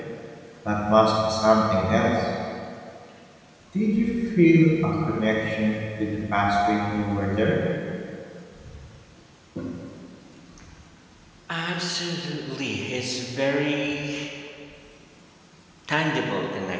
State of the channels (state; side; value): identical; both; correlation 1.00